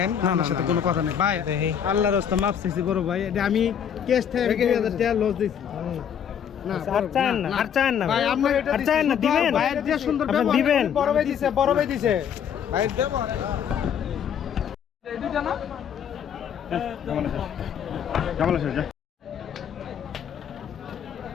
আমার সাথে কোনো কথা নেই ভাই আল্লাহর রাস্তা মাপ চাইছি বড় ভাই এটা আমি ক্যাশ থেকে 2000 টাকা লস দিছি না আর চান না আর চান না ভাই আপনি এটা আর চান না দিবেন ভাইয়ের যে সুন্দর আপনি ব্যবহার দিবেন বড় ভাই দিছে ভাই দেব এই দুইটা না কেমন আছে যা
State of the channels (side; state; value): right; quieter; 8.4 dB